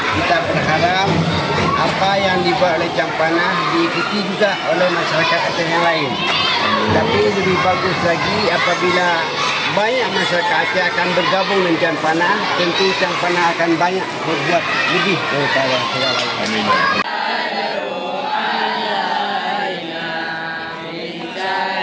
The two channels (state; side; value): identical; both; correlation 1.00